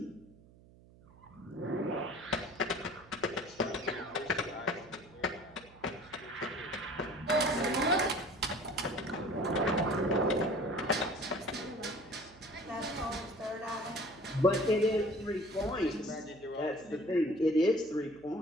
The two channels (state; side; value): noise; right; hum, 24 dB below the sound